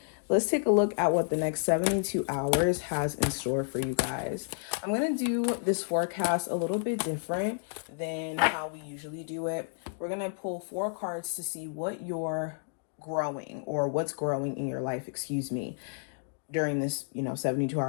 Let's take a look at what the next 72 hours has in store for you guys. I'm going to do this forecast a little bit different than how we usually do it. We're going to pull 4 cards to see what you're growing or what's growing in your life, during this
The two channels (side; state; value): right; silent; digital silence